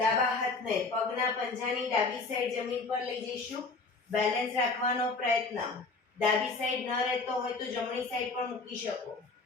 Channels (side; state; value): right; quieter; 3.9 dB